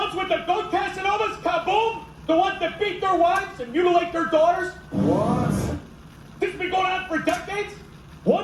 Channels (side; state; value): both; identical; correlation 1.00